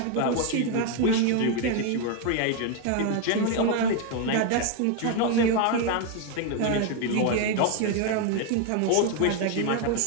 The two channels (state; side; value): different; both; correlation 0.01